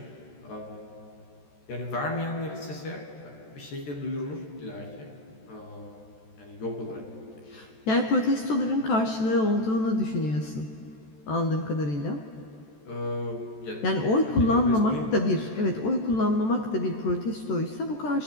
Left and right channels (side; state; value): right; late; 14 ms